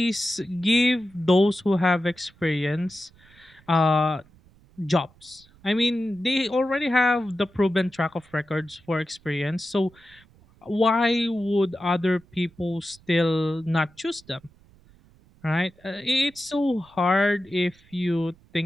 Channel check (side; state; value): right; noise; rumble, 28 dB below the sound